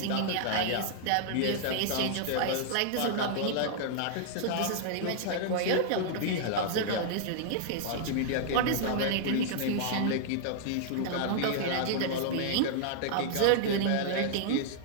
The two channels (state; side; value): different; both; correlation -0.01